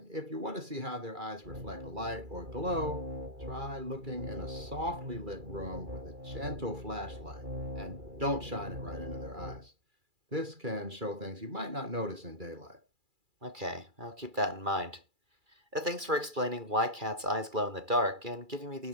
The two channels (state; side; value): late; left; 2.3 ms